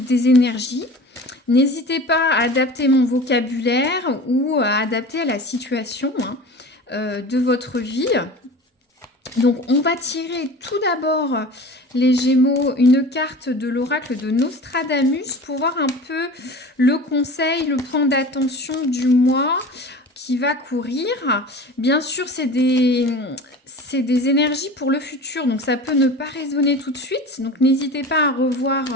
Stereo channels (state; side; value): normal; both; correlation 0.37